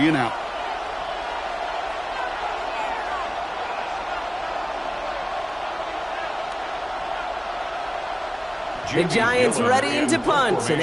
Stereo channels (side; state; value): both; identical; correlation 1.00